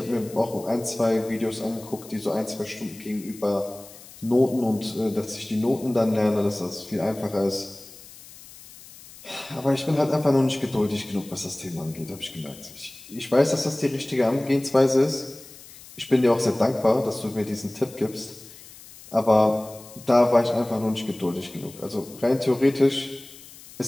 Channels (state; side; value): noise; left; hiss, 19 dB below the sound